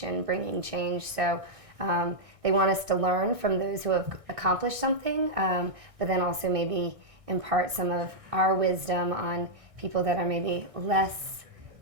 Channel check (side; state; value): left; late; 1.6 ms